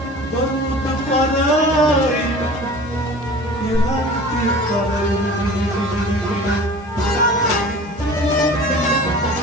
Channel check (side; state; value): both; normal; correlation 0.41